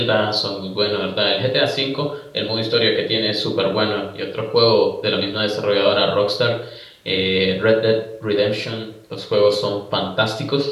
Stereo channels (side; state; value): both; identical; correlation 1.00